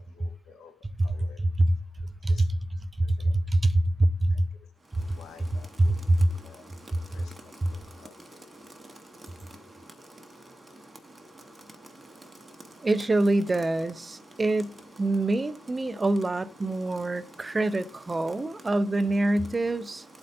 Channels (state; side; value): normal; both; correlation 0.96